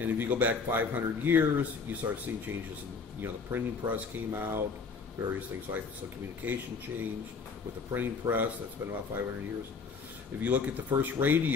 if you go back 500 years, you start seeing changes in, you know, the printing press came out, various things like that. So communication changed with the printing press. That's been about 500 years. If you look at the first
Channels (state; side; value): quieter; right; 5.0 dB